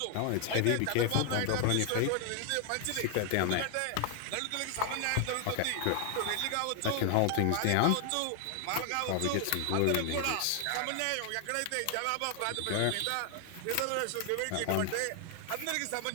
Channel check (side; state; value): both; different; correlation 0.00